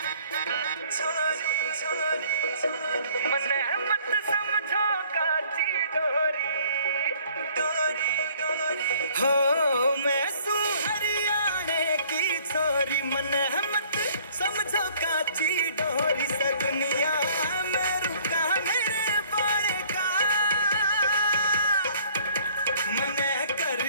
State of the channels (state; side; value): inverted; both; correlation -0.57